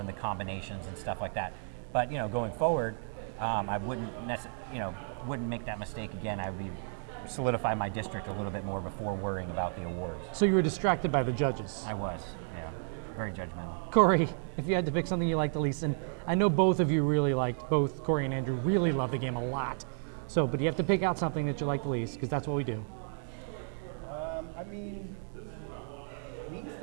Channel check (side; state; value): left; silent; digital silence